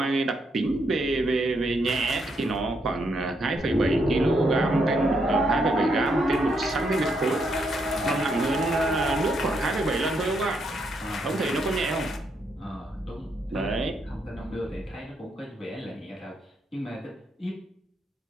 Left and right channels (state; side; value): normal; both; correlation 0.77